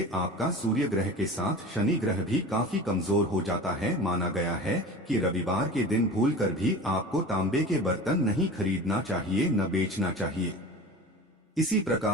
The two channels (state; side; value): normal; both; correlation 0.35